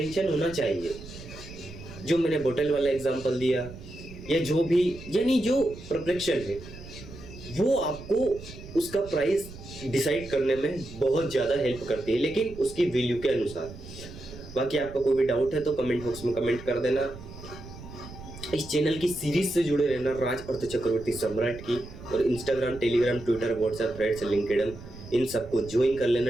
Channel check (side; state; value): right; noise; rumble, 15 dB below the sound